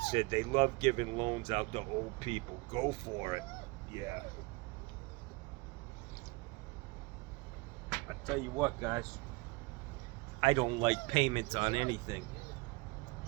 Said they love giving loans out to old people. Go for it. Yeah. I tell you what, guys. I don't like payments on anything.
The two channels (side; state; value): left; quieter; 25.3 dB